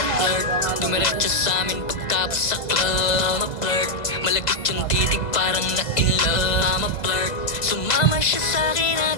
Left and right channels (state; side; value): late; right; 1.5 ms